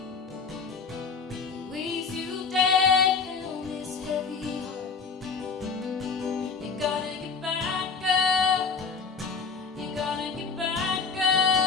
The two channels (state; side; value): quieter; right; 5.2 dB